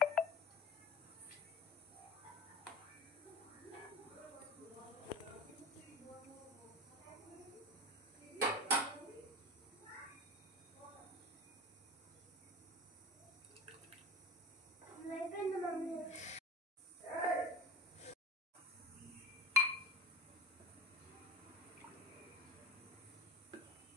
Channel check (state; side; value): normal; both; correlation 0.36